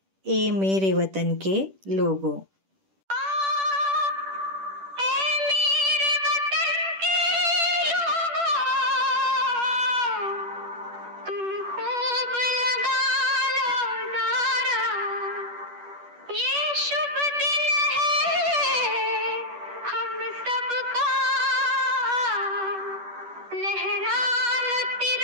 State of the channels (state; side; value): late; left; 10 ms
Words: ए मेरे वतन के लोगो.